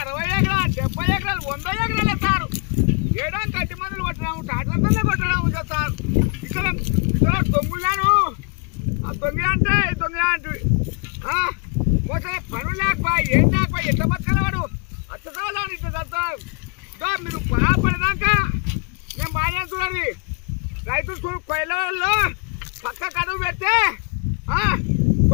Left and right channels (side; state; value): right; quieter; 35.3 dB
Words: ఎకరాలు 70 ఎకరాలు 100 ఎకరాలు ఎత్తారు ఏడానికి 8 మందులు కొట్టినాము టాటర్తోనే కొట్టడం చేస్తారు ఇక్కడ దొంగులాను ఆ దొంగ అంటే దొంగ అంటే మోసం పనులు లేకపోయి ఏం లేకపోయి ఎంత బతకలవాడు అచ్చసాలు ఇట్లా చదువుతారు మీరు బాధపడదాకా నేను బాగా చూడాలి రైతులు కొయ్యలలో పక్క కడుగు పెడితే